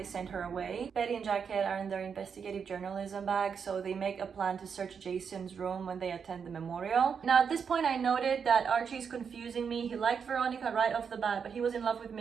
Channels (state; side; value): quieter; left; 6.5 dB